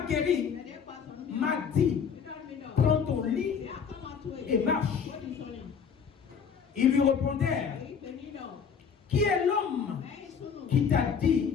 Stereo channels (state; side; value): quieter; right; 6.7 dB